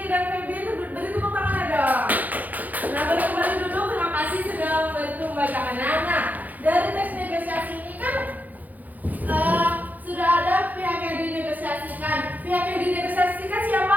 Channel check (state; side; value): late; left; 0.081 ms